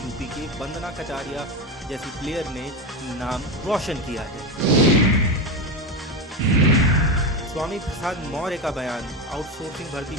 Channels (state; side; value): normal; both; correlation 0.16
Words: के वंदना कटारिया जैसी प्लेयर ने नाम रोशन किया है। स्वामी प्रसाद मौर्य का बयान। आउटसोर्सिंग भर्ती